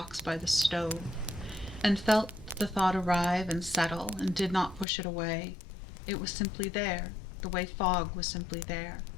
by the stove, and felt the thought arrive and settle and did not push it away. It was simply there, the way fog was simply there,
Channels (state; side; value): drops out; right; at 4.9 s